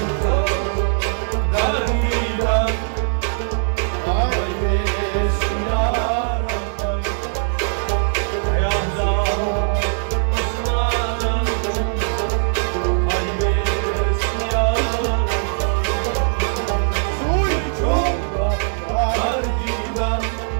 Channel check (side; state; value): left; silent; digital silence